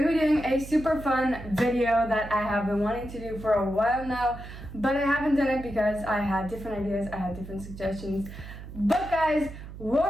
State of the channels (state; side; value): noise; right; hum, 13 dB below the sound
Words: to be doing a super fun video that I have been wanting to do for a while now, but I haven't done it because I had different ideas, I had different suggestions. But guys, what